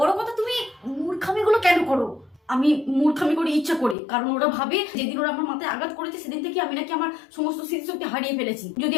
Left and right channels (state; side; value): drops out; right; at 4.0 s